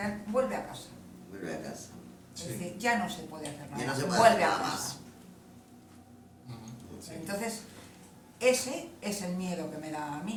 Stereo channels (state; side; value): identical; both; correlation 1.00